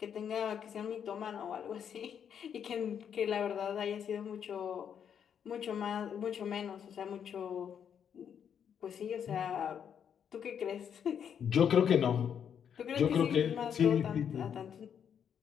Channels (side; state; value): right; quieter; 8.1 dB